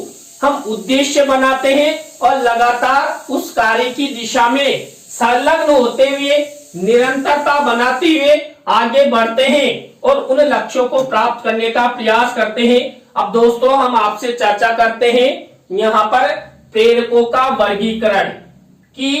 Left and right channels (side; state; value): both; identical; correlation 1.00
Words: हम उद्देश्य बनाते हैं और लगातार उस कार्य की दिशा में संलग्न होते हुए निरंतरता बनाते हुए आगे बढ़ते हैं और उन लक्ष्यों को प्राप्त करने का प्रयास करते हैं। अब दोस्तों, हम आपसे चर्चा करते हैं यहाँ पर प्रेरकों का वर्गीकरण